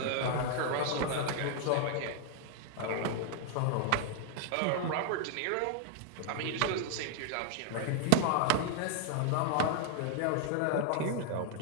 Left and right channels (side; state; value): both; different; correlation 0.00